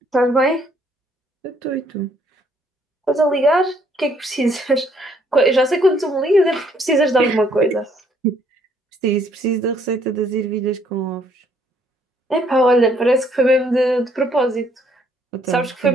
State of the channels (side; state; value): both; normal; correlation 0.66